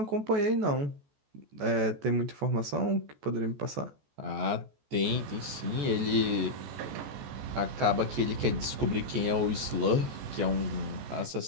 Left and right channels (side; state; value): left; late; 14 ms